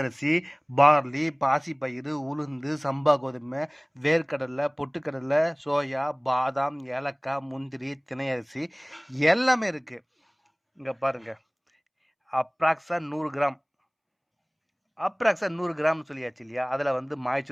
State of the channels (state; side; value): identical; both; correlation 1.00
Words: பார்லி, பாசிப்பயிறு, உளுந்து, சம்பா கோதுமை, வேர்க்கடலை, பொட்டுக்கடலை, சோயா, பாதாம், ஏலக்காய், முந்திரி, திணையரிசி எல்லாமே இருக்குது. இங்கே பாருங்கள், அப்ராக்ஸா 100 கிராம். அப்ராக்ஸா 100 கிராம் சொல்லியாச்சு இல்லையா? அதில் வந்து